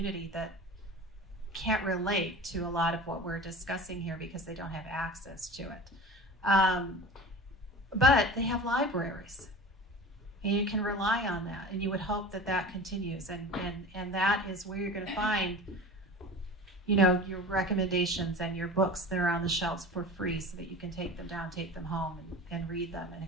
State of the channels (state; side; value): normal; both; correlation 0.36